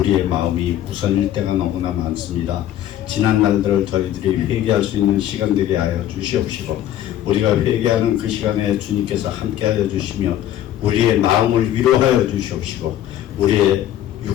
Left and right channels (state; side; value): quieter; right; 12.1 dB